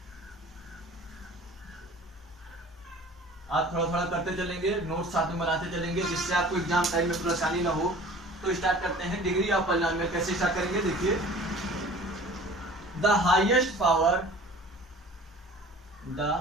आप थोड़ा थोड़ा करते चलेंगे, नोट्स साथ में बनाते चलेंगे, जिससे आपको एग्जाम टाइम में परेशानी ना हो। तो स्टार्ट करते हैं डिग्री ऑफ पॉलिनोमियल। कैसे स्टार्ट करेंगे? देखिए, the highest power the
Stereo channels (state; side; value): normal; both; correlation 0.45